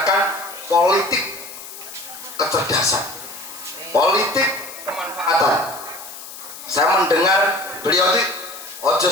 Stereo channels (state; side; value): noise; left; hiss, 13 dB below the sound